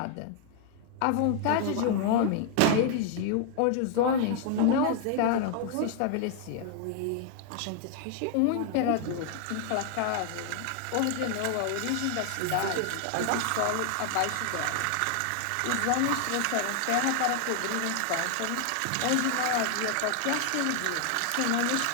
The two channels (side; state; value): both; different; correlation 0.00